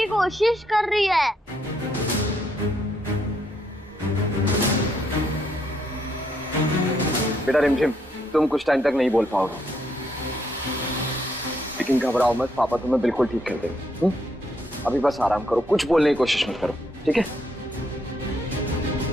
कोशिश कर रही है। बेटा रिमझिम, तुम कुछ टाइम तक नहीं बोल पाओगे, लेकिन घबराओ मत, पापा तुम्हें बिल्कुल ठीक कर देंगे। अभी बस आराम करो, कुछ बोलने की कोशिश मत करो, ठीक है?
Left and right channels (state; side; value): normal; both; correlation 0.74